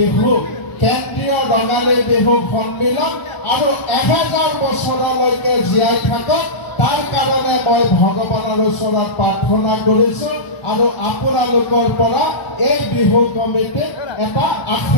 কেন্দ্ৰীয় ৰঙালী বিহু সন্মিলন আৰু 1000 বছৰলৈকে জীয়াই থাকক তাৰ কাৰণে মই ভগৱানৰ ওচৰত প্ৰাৰ্থনা কৰিছোঁ আৰু আপোনালোকৰ পৰা এই বিহু কমিটিক এটা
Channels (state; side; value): late; right; 1.0 ms